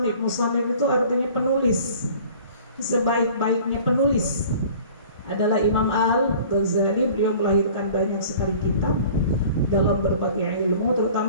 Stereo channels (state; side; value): inverted; both; correlation -0.47